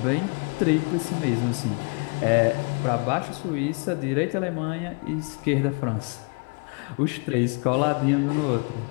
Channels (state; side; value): quieter; right; 33.8 dB